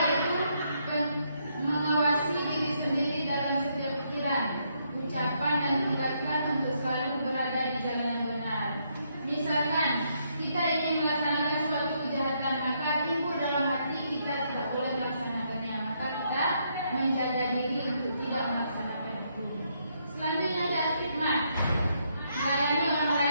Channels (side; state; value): both; inverted; correlation -0.75